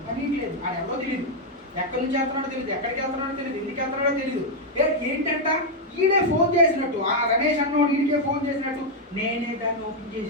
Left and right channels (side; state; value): both; normal; correlation 0.00